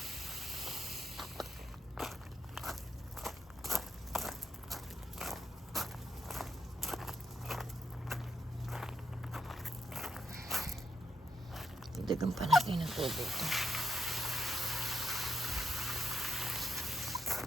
Dagan pa natin ang tubig.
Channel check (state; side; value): normal; both; correlation 0.81